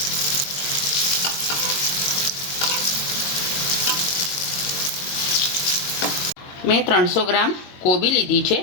મેં 300 ગ્રામ કોબી લીધી છે।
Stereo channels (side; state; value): right; late; 22 ms